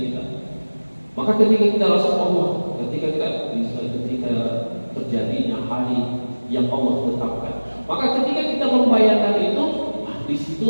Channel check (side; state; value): both; inverted; correlation -1.00